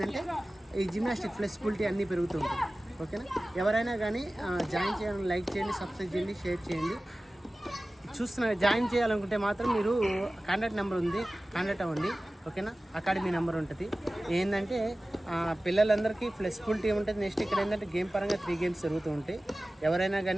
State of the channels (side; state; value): both; normal; correlation 0.97